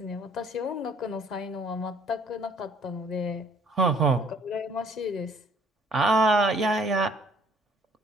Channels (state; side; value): normal; both; correlation 0.60